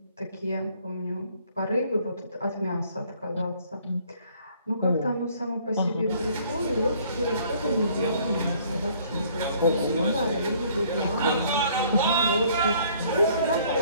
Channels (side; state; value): both; inverted; correlation -0.60